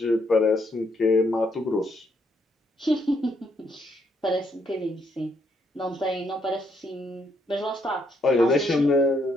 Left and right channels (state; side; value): normal; both; correlation 0.73